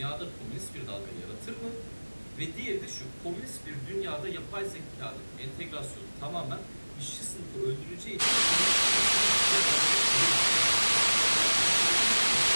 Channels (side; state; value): both; inverted; correlation -1.00